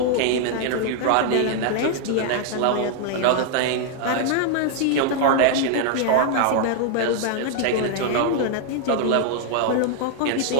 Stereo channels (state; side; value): different; both; correlation 0.00